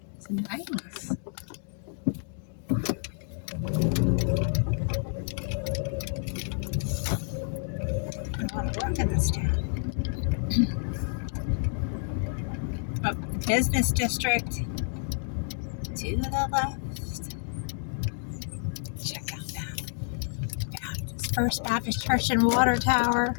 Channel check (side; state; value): right; silent; 58 dB below the other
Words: It's nice. I want to work in this town. A business district to the left. Check out that. Yeah, it's First Baptist Church and Water Tower.